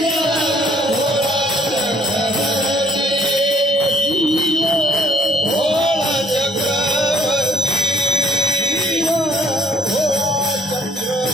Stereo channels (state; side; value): normal; both; correlation 0.62